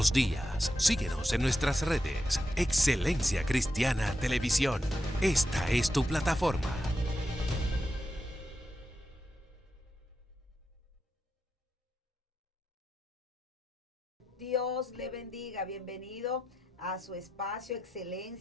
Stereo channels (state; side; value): normal; both; correlation 0.87